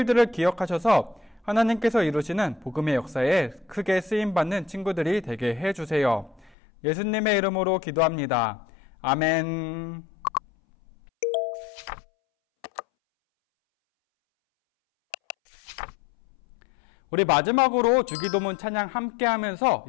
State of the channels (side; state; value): right; drops out; at 6.5 s